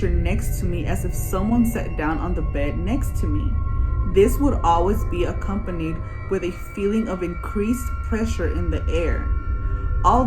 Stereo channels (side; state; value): both; identical; correlation 1.00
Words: next to me as if someone sat down on the bed next to me. This would always be accompanied with a feeling of increased pressure in the air.